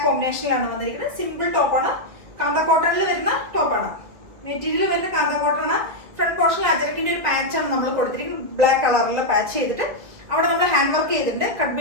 കോമ്പിനേഷനിലാണ് വന്നിരിക്കുന്നത്. സിമ്പിൾ ടോപ്പാണ്, കാന്ത കോട്ടണിൽ വരുന്ന ടോപ്പാണ്. മെറ്റീരിയൽ വരുന്ന കാന്ത കോട്ടൺ. ഫ്രണ്ട് പോർഷനിൽ അജരക്കിന്റെ ഒരു പാച്ചാണ് നമ്മൾ കൊടുത്തിരിക്കുന്നത്. ബ്ലാക്ക് കളറിൽ പാച്ച് ചെയ്തിട്ട് അവിടെ നമ്മൾ ഹാൻഡ് വർക്ക് ചെയ്തിട്ടുണ്ട്. കട്ട്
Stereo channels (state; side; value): late; left; 2.2 ms